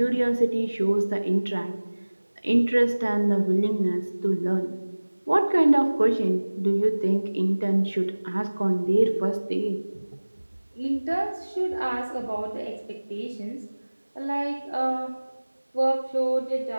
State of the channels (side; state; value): both; inverted; correlation -1.00